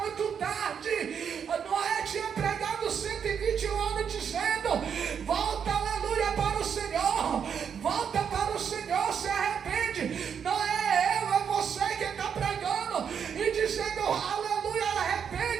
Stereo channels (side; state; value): left; quieter; 7.4 dB